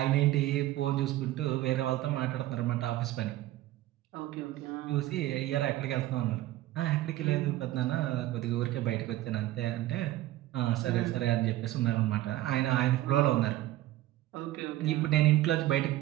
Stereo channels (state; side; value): quieter; left; 15.4 dB